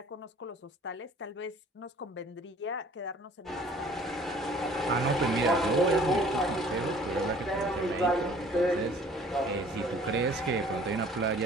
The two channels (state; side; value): normal; both; correlation 0.52